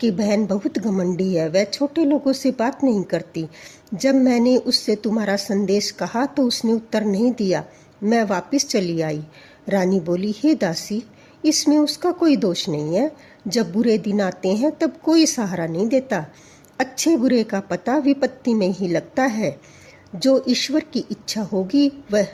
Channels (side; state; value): both; identical; correlation 1.00